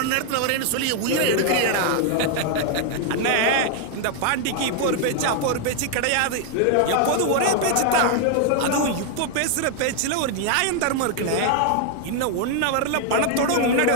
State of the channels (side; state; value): both; different; correlation 0.00